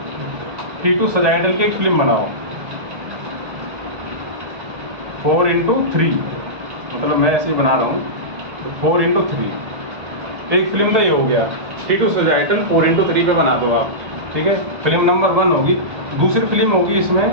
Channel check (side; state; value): left; late; 1.6 ms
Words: T2 sagittal की एक फिल्म बनाओ 4x3, मतलब मैं ऐसे ही बना रहा हूँ, तो 4x3 एक फिल्म तो ये हो गया। T2 सजाइटल 4x3 पे बना दो आप, ठीक है। फिल्म नंबर 1 होगी। दूसरी फिल्म होगी